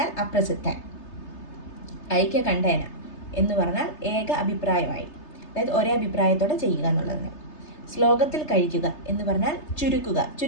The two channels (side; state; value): right; late; 3.3 ms